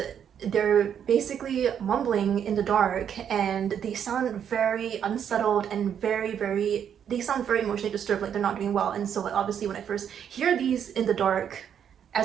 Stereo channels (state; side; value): quieter; left; 8.6 dB